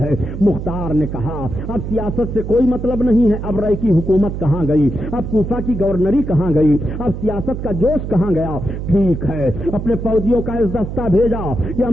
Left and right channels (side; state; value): right; noise; hum, 6 dB below the sound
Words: ہے. مختار نے کہا اب سیاست سے کوئی مطلب نہیں ہے, اب رائے کی حکومت کہاں گئی, اب کوفہ کی گورنری کہاں گئی, اب سیاست کا جوش کہاں گیا؟ ٹھیک ہے, اپنے فوجیوں کا اس دستہ بھیجا کہ